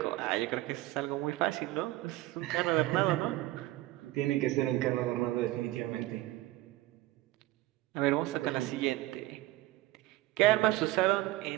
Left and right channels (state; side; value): quieter; left; 17.2 dB